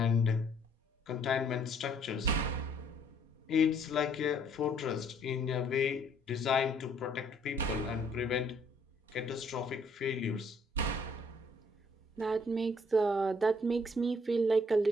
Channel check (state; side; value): normal; both; correlation 0.64